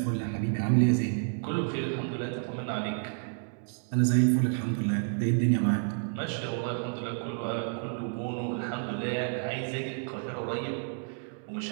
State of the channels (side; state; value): left; silent; 58 dB below the other